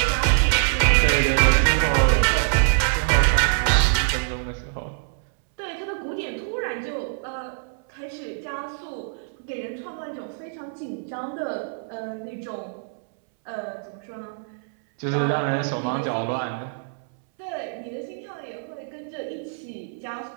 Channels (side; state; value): left; silent; 62 dB below the other